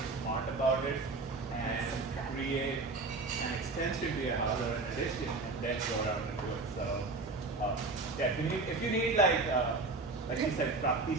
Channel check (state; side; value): quieter; left; 3.6 dB